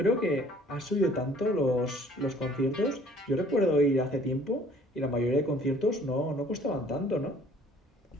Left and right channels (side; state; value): both; normal; correlation 0.56